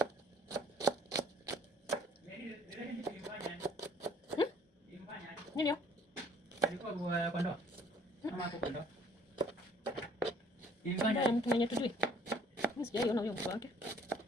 Nini? Ndio mtu mwenye tujui. Mimi sijaiona huyo mtu wake.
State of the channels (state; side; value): normal; both; correlation 0.57